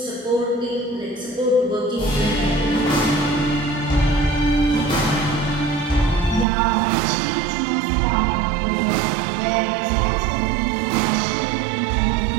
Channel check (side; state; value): left; drops out; at 6.5 s